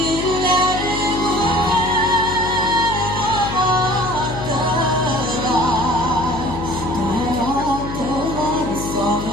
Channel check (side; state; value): left; noise; hum, 7 dB below the sound